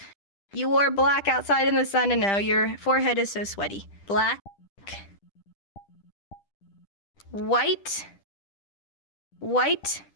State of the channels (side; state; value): right; late; 10 ms